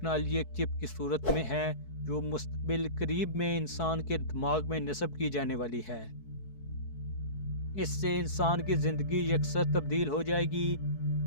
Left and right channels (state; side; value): late; right; 4.6 ms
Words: ایک چپ کی صورت میں ہے جو مستقبل قریب میں انسان کے دماغ میں نصب کی جانے والی ہے۔ اس سے انسان کی زندگی یکسر تبدیل ہو جائے گی۔